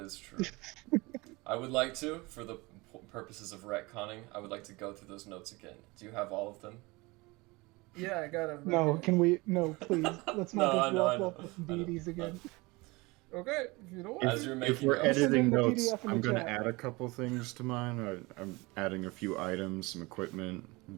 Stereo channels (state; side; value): quieter; left; 23.8 dB